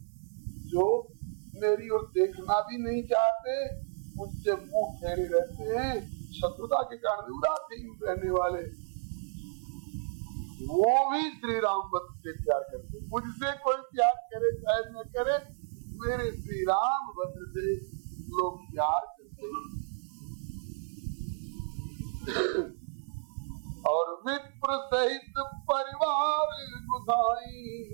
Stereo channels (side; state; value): left; silent; 56 dB below the other